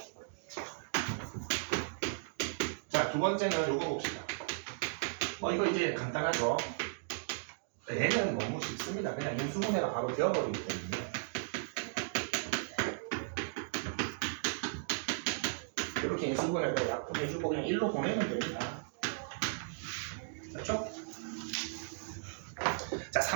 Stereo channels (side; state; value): left; silent; digital silence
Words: 자, 두 번째는 요거 봅시다. 이거 이제 간단하죠? 얘는 너무 쉽습니다. 그냥 인수분해가 바로 되어버리기 때문에. 이렇게 인수분해를 약분해주고 그냥 1로 보내면 됩니다. 그렇죠? 자,